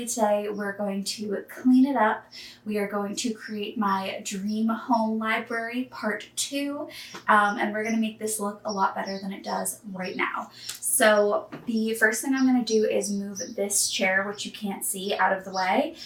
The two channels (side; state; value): both; identical; correlation 1.00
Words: today we're going to clean it up. We are going to create my dream home library part 2, and we're going to make this look a lot better than it does right now. So the first thing I'm going to do is move this chair, which you can't see, out of the way,